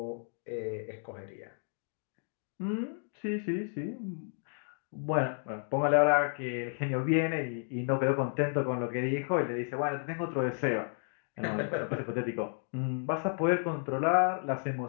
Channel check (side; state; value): right; silent; 56 dB below the other